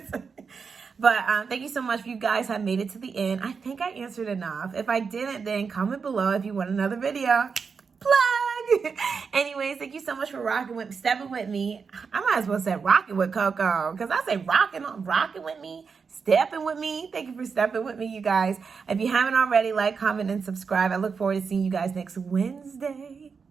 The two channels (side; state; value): left; quieter; 5.5 dB